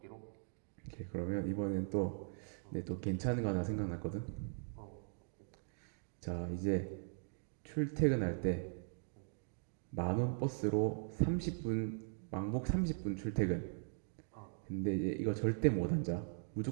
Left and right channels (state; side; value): silent; left; digital silence